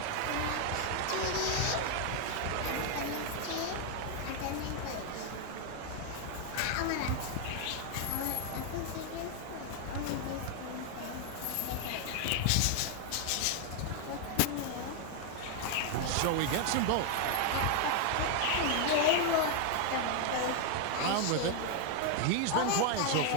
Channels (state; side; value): different; both; correlation 0.00